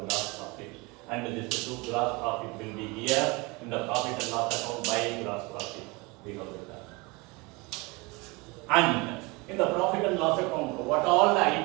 gross profit. And this two gross profit will be here in the profit and loss account by gross profit. We have written. And in the profit and loss account, what all the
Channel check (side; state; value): left; quieter; 26.1 dB